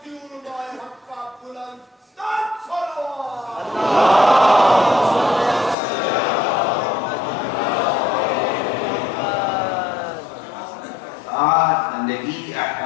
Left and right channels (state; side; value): drops out; right; at 5.8 s